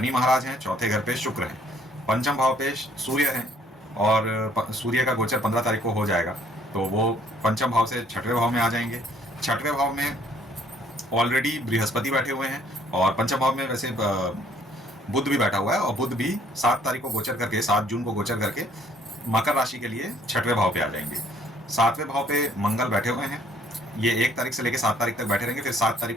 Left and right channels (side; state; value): both; normal; correlation 0.62